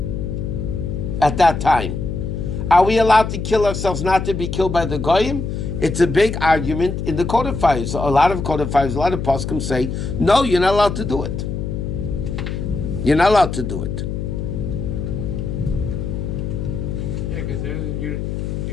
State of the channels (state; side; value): noise; left; hum, 4 dB below the sound